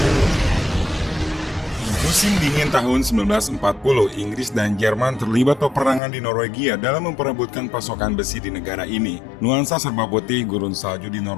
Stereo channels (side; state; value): right; drops out; at 6.0 s